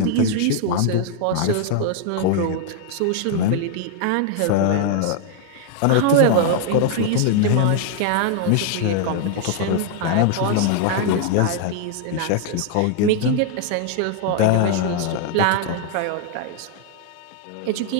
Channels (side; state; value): both; different; correlation 0.00